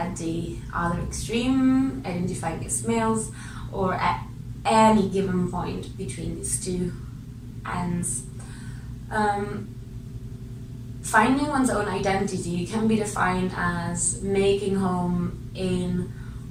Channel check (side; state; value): both; identical; correlation 1.00